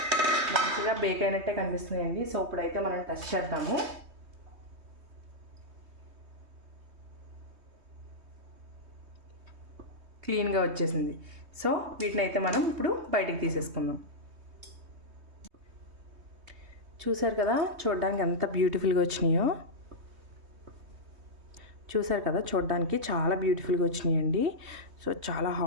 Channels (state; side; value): late; left; 3.2 ms